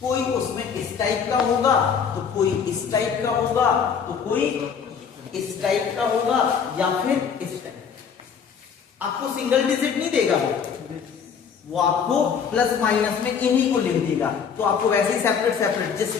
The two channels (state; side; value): quieter; right; 6.8 dB